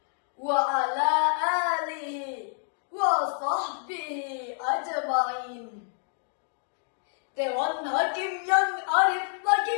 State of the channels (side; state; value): right; silent; 59 dB below the other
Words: wa ala alihi wa sahbihi ajma'in. Dewan Hakim yang arif lagi